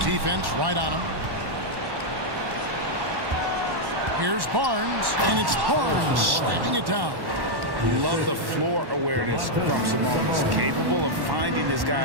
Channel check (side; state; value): left; late; 1.1 ms